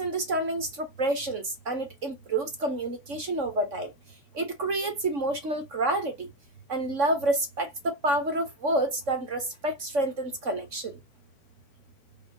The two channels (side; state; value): left; late; 3.6 ms